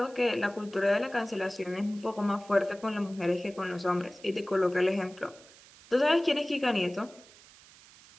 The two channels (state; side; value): noise; right; hiss, 23 dB below the sound